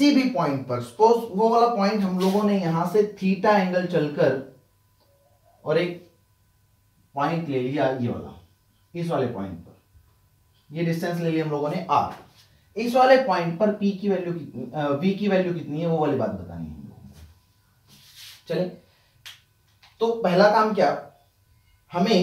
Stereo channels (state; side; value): identical; both; correlation 1.00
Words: भी पॉइंट पर, सपोज वो वाला पॉइंट हम लोगों ने यहां से थीटा एंगल चलकर और एक पॉइंट ले लिया, ये वाला, इस वाले पॉइंट पर ये डिस्टेंस ले लिया हम लोगों ने R। इस वाले पॉइंट पर P की वैल्यू कितनी, V की वैल्यू कितनी है, वो वाली बात बतानी है हम लोगों को। चले, तो पहला काम क्या,